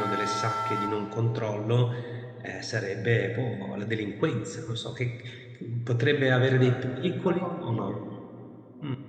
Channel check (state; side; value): identical; both; correlation 1.00